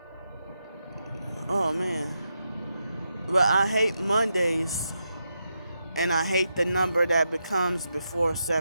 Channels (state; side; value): inverted; both; correlation -0.85